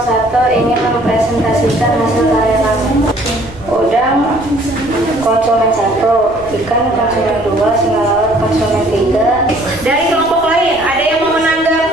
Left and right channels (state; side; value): noise; right; rumble, 19 dB below the sound